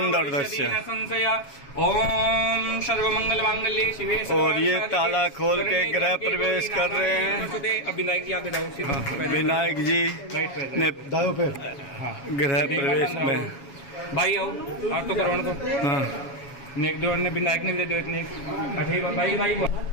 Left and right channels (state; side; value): late; right; 7.2 ms